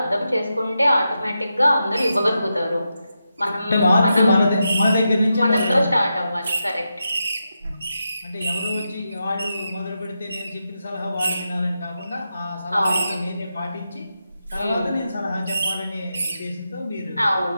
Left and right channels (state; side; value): inverted; both; correlation -0.87